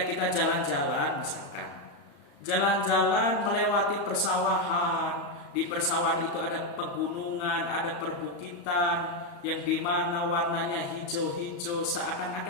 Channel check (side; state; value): right; late; 35 ms